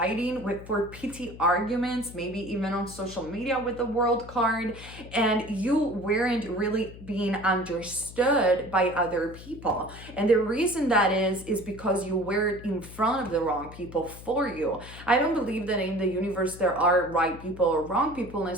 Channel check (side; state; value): left; noise; hum, 16 dB below the sound